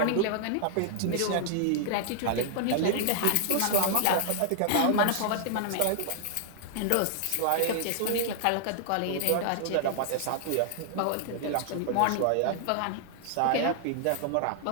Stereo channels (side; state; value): both; different; correlation -0.01